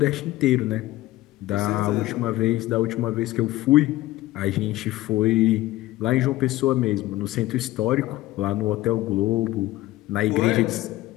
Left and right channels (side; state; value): right; quieter; 16.9 dB